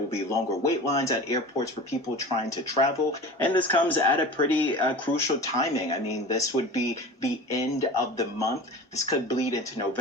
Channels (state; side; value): normal; both; correlation 0.35